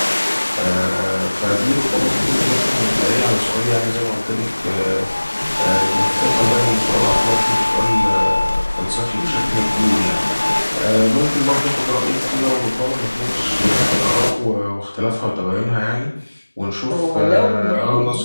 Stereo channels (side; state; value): both; inverted; correlation -1.00